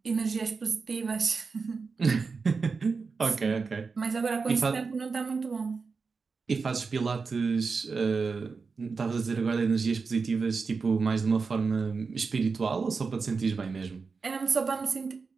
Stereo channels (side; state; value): left; quieter; 4.8 dB